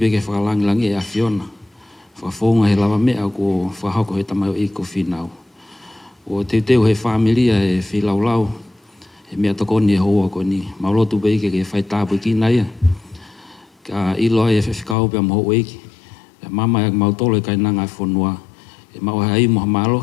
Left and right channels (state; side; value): drops out; right; at 15.0 s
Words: whakalangilangi e awhiona. Whakafonga he lava mea ko whahako he tamai o iko Finau. O teu he familia e whilaulau, he mea tokoni e hoa koni. Mau lotu beke ke whai tāpui ki naia. Ka ilo e whiwhikau pia maho eiki. Pia mama e mau tolo e kai nanga e whonua. E mau hai moha